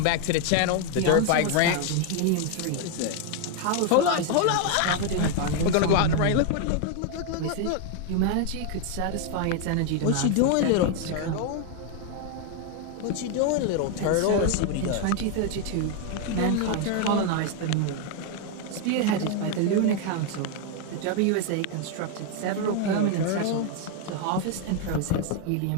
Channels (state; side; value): different; both; correlation 0.01